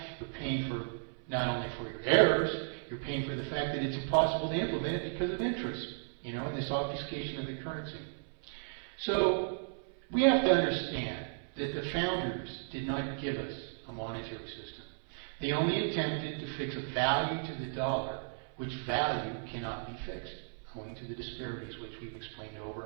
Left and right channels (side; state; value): left; silent; 55 dB below the other